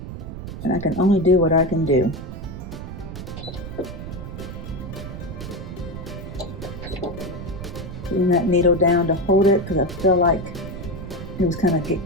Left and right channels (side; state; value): right; noise; rumble, 9 dB below the sound